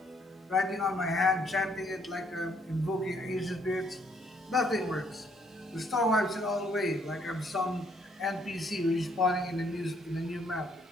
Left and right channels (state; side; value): normal; both; correlation 0.68